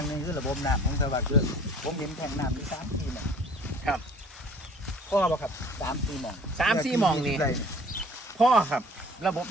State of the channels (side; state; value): both; normal; correlation 0.50